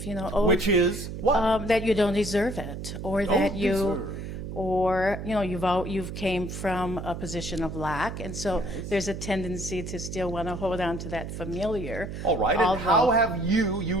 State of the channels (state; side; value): noise; right; hum, 7 dB below the sound